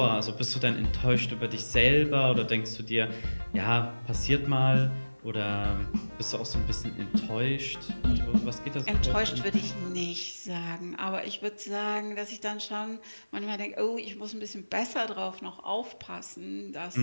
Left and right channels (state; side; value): inverted; both; correlation -1.00